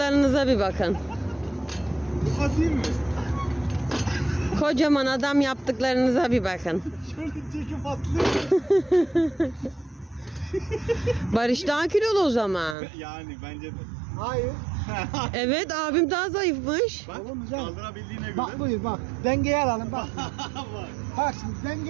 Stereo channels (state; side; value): drops out; left; at 12.8 s